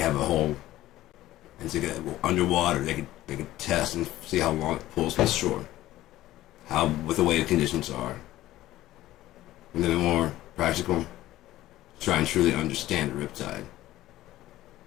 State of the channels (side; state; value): right; quieter; 15.3 dB